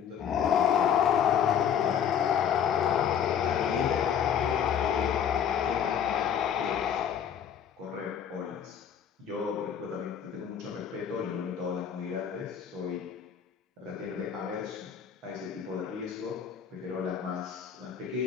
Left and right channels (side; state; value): right; quieter; 8.5 dB